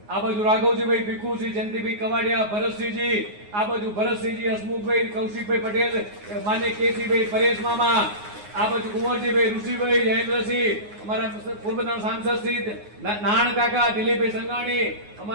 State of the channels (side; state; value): left; late; 9.6 ms